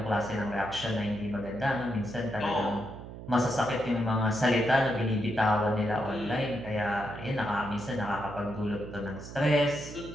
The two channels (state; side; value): noise; right; hum, 12 dB below the sound